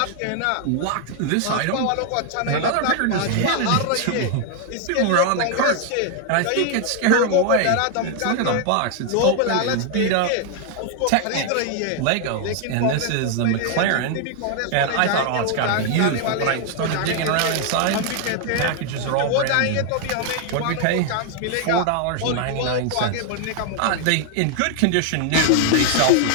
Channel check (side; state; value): both; different; correlation 0.00